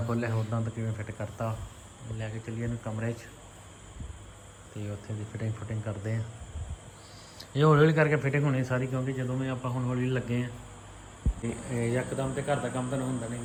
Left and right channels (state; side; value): identical; both; correlation 1.00